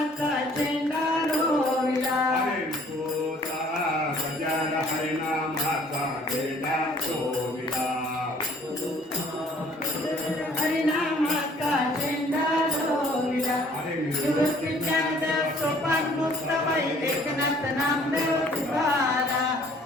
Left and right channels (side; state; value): both; normal; correlation 0.57